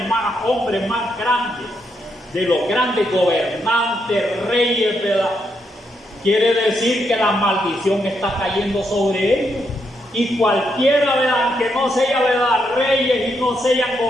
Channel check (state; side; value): normal; both; correlation 0.79